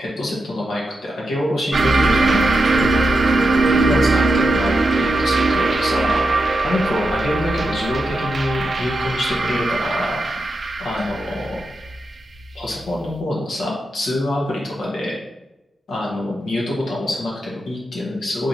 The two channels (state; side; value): normal; both; correlation 0.87